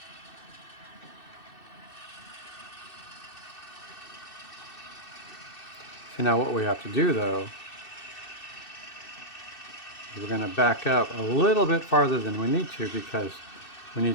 And now what we have to do though, is we're going to back up a little bit farther than we need to, because we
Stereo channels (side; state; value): right; late; 2.6 ms